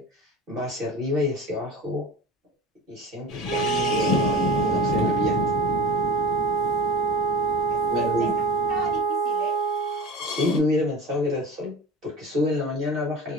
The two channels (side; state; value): both; normal; correlation 0.34